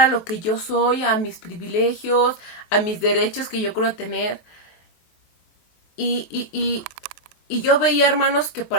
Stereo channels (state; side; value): late; right; 23 ms